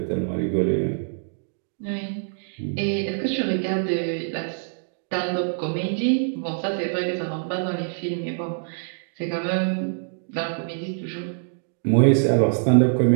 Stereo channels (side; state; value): left; silent; digital silence